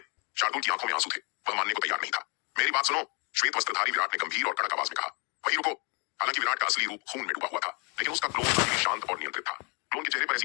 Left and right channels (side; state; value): right; quieter; 33.4 dB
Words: शार्दुल की आंखों में आंसू थे। वह मानने को तैयार नहीं था। मेरी बात सुनो, श्वेत वस्त्रधारी विराट ने गंभीर और कड़क आवाज में कहा। वहीं रुको। हालांकि विराट का असली रूप खून में डूबा हुआ था, लेकिन उसका क्लोन अभी भी शांत और नियंत्रित था। क्लोन के चेहरे पर